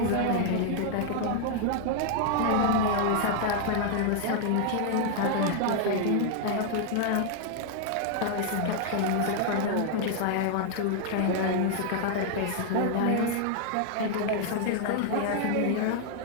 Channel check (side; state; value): both; different; correlation 0.00